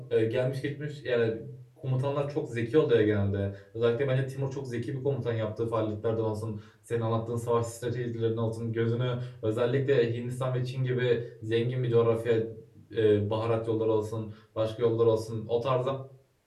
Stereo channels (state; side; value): identical; both; correlation 1.00